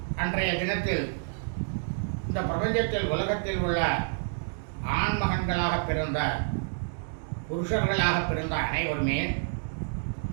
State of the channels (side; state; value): left; silent; digital silence